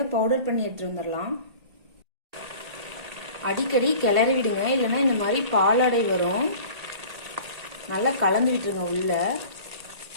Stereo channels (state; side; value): late; left; 1.8 ms